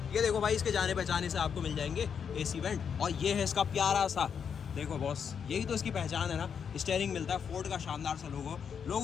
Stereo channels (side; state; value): right; quieter; 7.1 dB